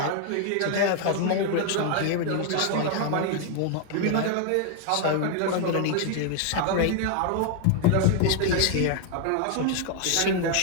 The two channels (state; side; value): different; both; correlation 0.00